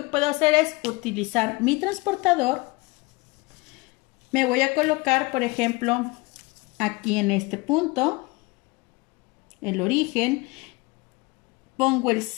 puedo hacer es utilizar mi transportador. Me voy a colocar, por ejemplo, aquí en este punto, el origen, pongo el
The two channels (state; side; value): quieter; right; 24.0 dB